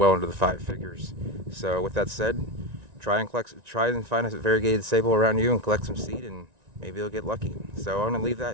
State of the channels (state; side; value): late; left; 1.9 ms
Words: into the 5 figures. So with that said, try and find a variegated sabal around you and collect some seed, and maybe you'll get lucky. So I'm going to leave